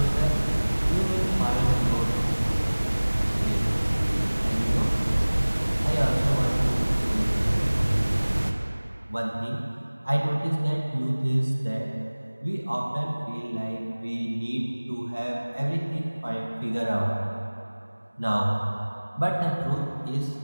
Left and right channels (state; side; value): inverted; both; correlation -1.00